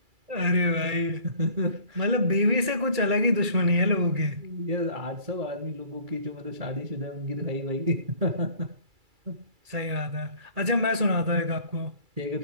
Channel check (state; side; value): late; left; 2.3 ms